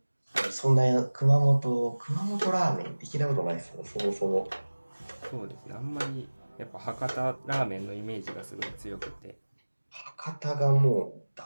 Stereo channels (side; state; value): both; inverted; correlation -1.00